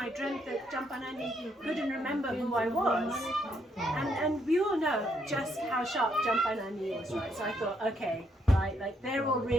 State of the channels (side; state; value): both; normal; correlation 0.74